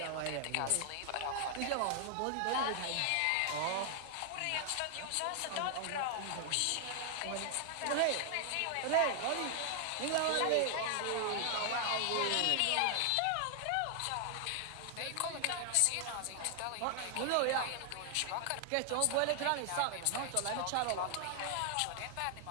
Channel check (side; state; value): both; different; correlation 0.00